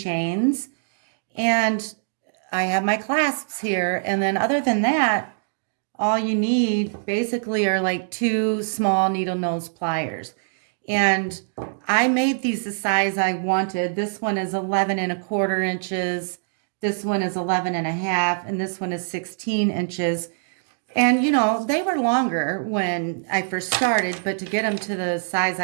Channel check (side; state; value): left; silent; digital silence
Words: and I have my clasps here. And then other than that, all you need basically are like 2 small needle nose pliers. And I made these the size I wanted. This one is 11 1/4 inches. This one is 11 1/2, and this one is 16 inches. And, they were longer when I first started, but to get them to the size